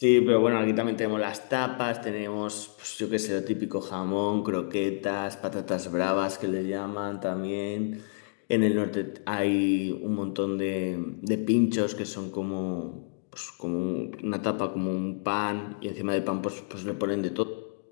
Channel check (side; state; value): right; silent; digital silence